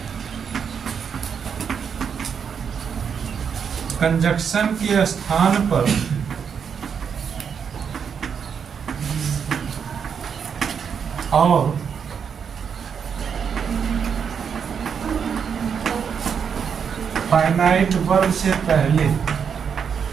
कंजक्शन के स्थान पर और फाइनाइट वर्ब से पहले,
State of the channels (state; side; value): quieter; left; 7.0 dB